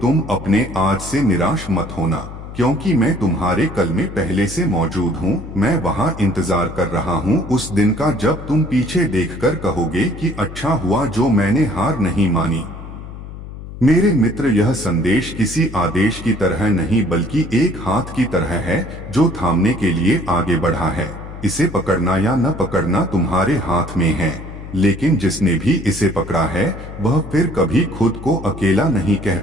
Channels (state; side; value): noise; left; hum, 12 dB below the sound